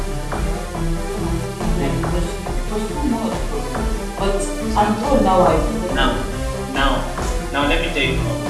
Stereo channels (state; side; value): identical; both; correlation 1.00